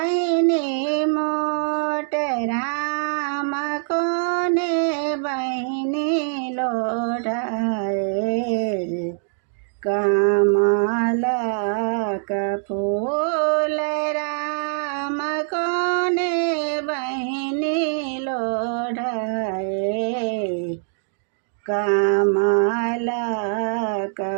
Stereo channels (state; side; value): silent; left; digital silence